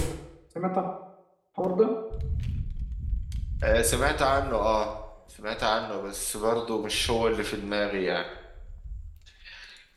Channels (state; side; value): identical; both; correlation 1.00